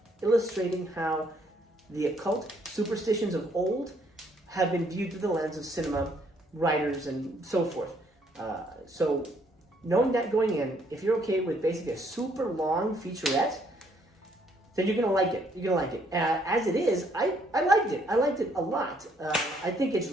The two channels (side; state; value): both; normal; correlation 0.67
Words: illustrating how the occult superstitions of old have been viewed through the lens of cinema, writers, and so forth. So knowing that going in, if you're okay with basically a super long featurette, then you're going to like it. As it is, I liked it. I liked it a lot. I think it's